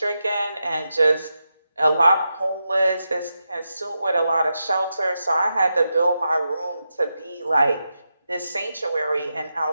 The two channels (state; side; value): inverted; both; correlation -0.87